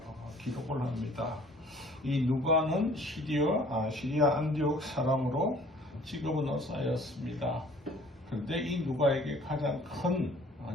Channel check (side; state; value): both; normal; correlation 0.54